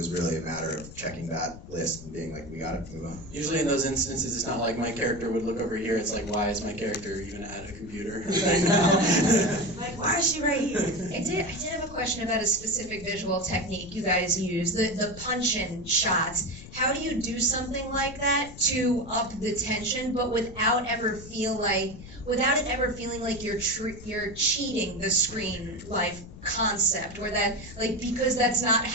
really a matter of checking that list and being like, we gotta move on. Usually in those instances, it's not like my character would look over here, it's like, why is my character even at a computer right now? Like, why is she right here? I did have a question about a specific visual technique you guys use, the punch-in shots. How do you do something like that to up the tension, but without it ever feeling like you're cheating the screen life concept, or that, like, because that's not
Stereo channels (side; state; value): left; noise; rumble, 15 dB below the sound